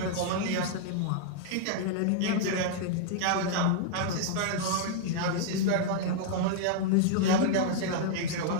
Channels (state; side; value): different; both; correlation -0.01